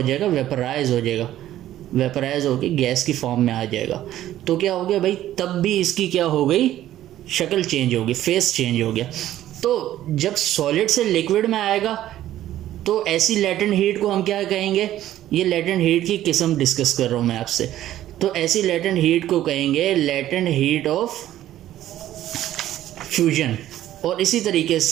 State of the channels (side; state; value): left; quieter; 13.1 dB